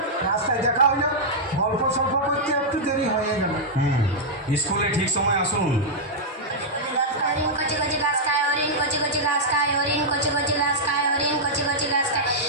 রাস্তায় দেখা হইল, গল্প সল্প করতে একটু দেরি হয়ে গেল। স্কুলে ঠিক সময় আসুন। হরিণ কচি কচি ঘাস খায়, হরিণ কচি কচি ঘাস খায়, হরিণ কচি কচি ঘাস খায়, হরিণ কচি কচি ঘাস খায়,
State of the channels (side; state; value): both; normal; correlation -0.07